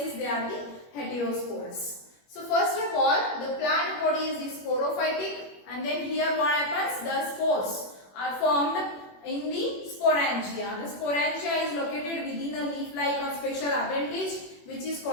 they are the heterosporous. So first of all, the plant body is the sporophytic, and then here what happens? The spores are formed in the sporangia. The sporangia is located within a leaf-like or special appendage which is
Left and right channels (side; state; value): right; late; 21 ms